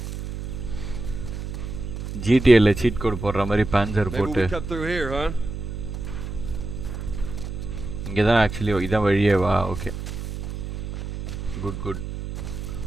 ஜிடிஎல்ல சீட் கோட் போடுற மாதிரி பேன்சர் போட்டு இங்கே தான் ஆக்சுவலி இதான் வழியே வா. Okay, good.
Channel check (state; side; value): noise; right; hum, 7 dB below the sound